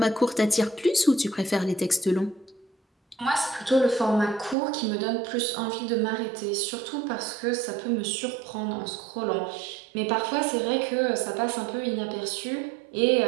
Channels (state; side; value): drops out; left; at 4.5 s